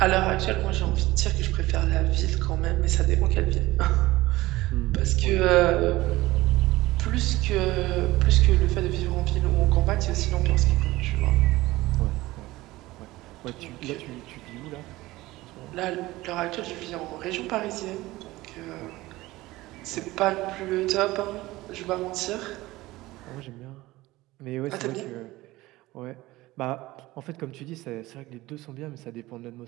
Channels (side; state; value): left; quieter; 18.6 dB